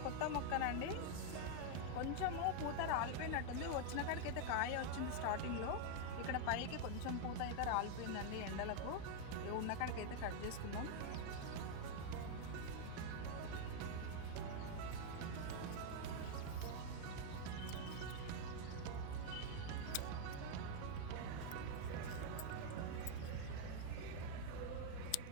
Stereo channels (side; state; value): both; different; correlation 0.00